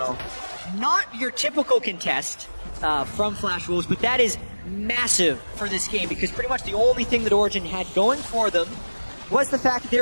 Not your typical contest from Flash Wolves, but that is massive for this game because pretty much the only thing that Origen had going for them was the fact that they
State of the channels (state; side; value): inverted; both; correlation -1.00